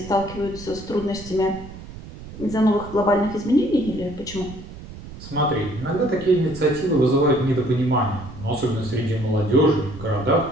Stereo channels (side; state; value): right; noise; rumble, 14 dB below the sound